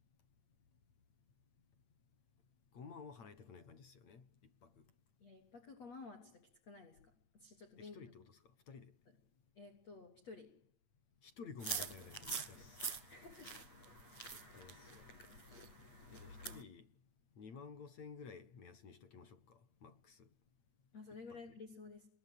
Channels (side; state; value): right; late; 8.9 ms